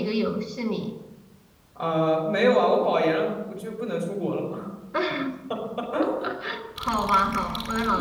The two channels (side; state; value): both; identical; correlation 1.00